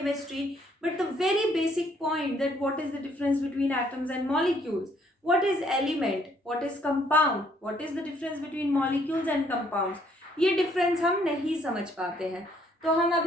but the very basic point that what is the difference between atoms and molecules, what is element, what is compound, what is the difference between molecules and compounds, ये डिफरेंस हम नहीं समझ पाते हैं. तो हम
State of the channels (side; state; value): both; normal; correlation 0.66